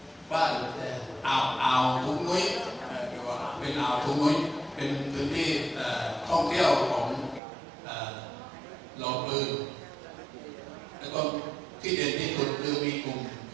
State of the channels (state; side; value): drops out; left; at 7.4 s